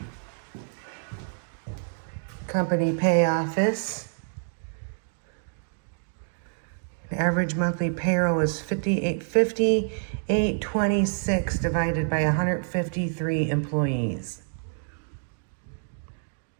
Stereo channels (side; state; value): left; silent; 60 dB below the other